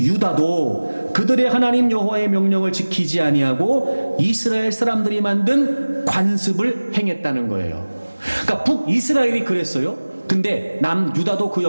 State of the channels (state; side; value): inverted; both; correlation -1.00